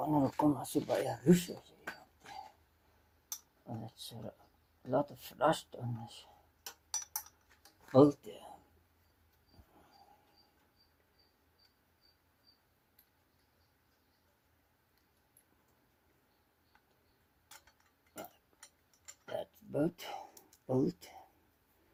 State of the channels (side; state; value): both; identical; correlation 1.00